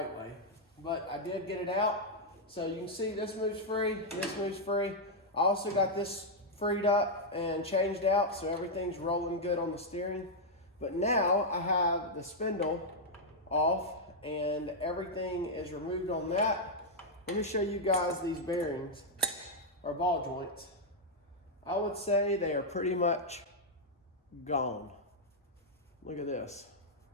way. But I did get it out. So you can see this moves free, this moves free. I also got this freed up and changed out, so everything's rolling good on the steering. But now I have the spindle off and everything is removed on that. Let me show you guys these bearings or ball joints. I would say they are pretty much gone. Look at this.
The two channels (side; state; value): both; normal; correlation -0.03